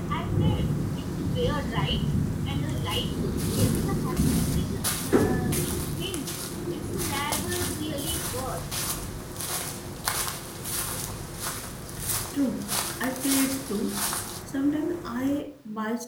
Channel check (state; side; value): identical; both; correlation 1.00